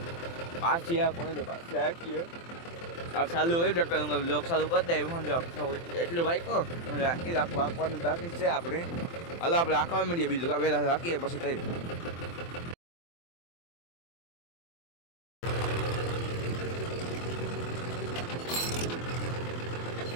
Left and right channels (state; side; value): late; right; 23 ms